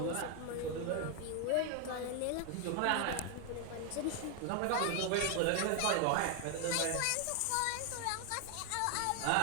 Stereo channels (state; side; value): different; both; correlation 0.01